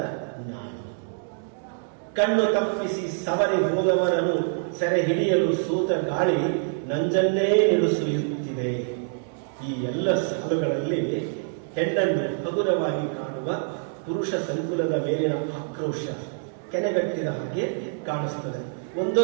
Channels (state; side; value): silent; left; digital silence